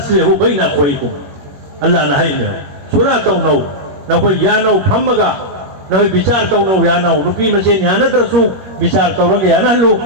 बैना खोइकुम अल्लाह ना हाइने सुला तौनो ना कोई यानो फमगा ना विचार तौनो यानो नुपी मसेन यानद्रसु विचार तौरग यानहलु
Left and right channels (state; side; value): late; left; 21 ms